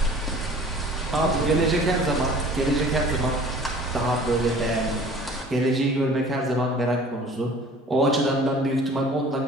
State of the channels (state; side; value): normal; both; correlation 0.47